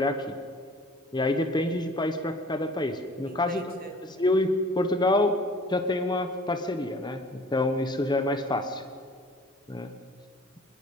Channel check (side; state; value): both; normal; correlation 0.49